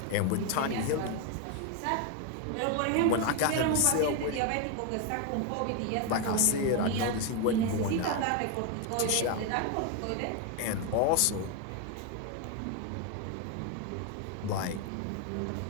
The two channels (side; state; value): both; different; correlation 0.01